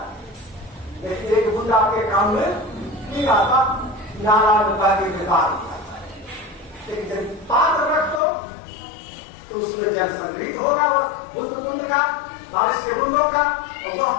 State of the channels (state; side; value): drops out; right; at 8.2 s